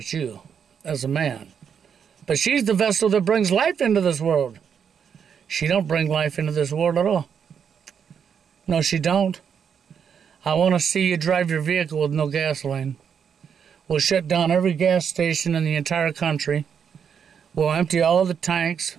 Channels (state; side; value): quieter; left; 7.4 dB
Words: you as a man. But she's the vessel that brings life into this world. She don't bring life into this world at all. No, she don't. I want to see you drive your vehicle with no gasoline. We'll shut down every gas station in the entire country. We'll empty all the tanks.